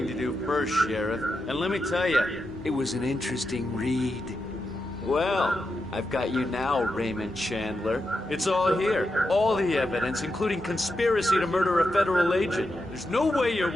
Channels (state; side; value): normal; both; correlation 0.87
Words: to do first, Sheriff, and let me tell you, it was an interesting read. Well, I've got you now, Raymond Chandler. It's all here. All the evidence, including conspiracy to murder a federal agent. There's no way you're